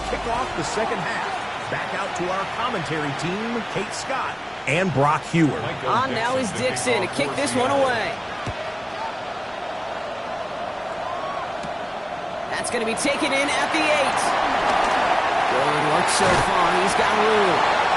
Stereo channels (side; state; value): both; identical; correlation 1.00